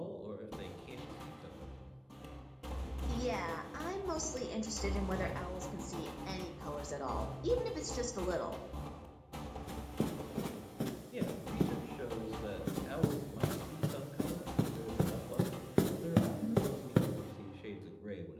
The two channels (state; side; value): identical; both; correlation 1.00